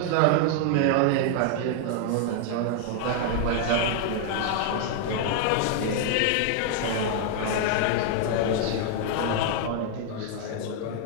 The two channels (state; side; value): different; both; correlation 0.00